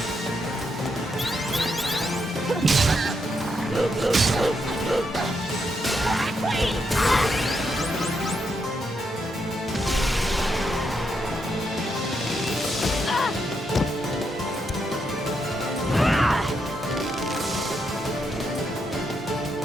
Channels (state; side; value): normal; both; correlation 0.80